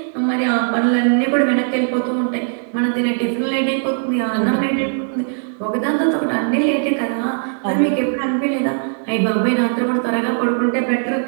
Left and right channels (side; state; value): left; silent; digital silence